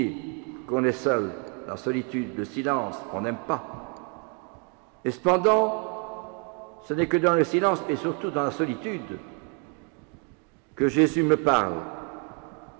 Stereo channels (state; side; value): quieter; left; 34.3 dB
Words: qu'on est seul, la solitude, le silence, on n'aime pas. Et cependant, ce n'est que dans le silence, et surtout dans la solitude, que Jésus me parle,